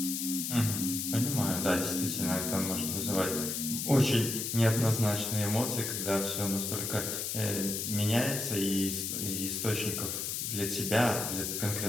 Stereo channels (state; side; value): noise; left; hiss, 2 dB below the sound